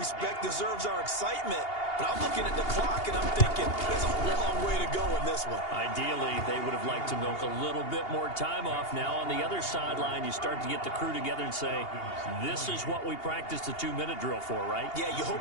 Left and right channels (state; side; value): late; right; 2.8 ms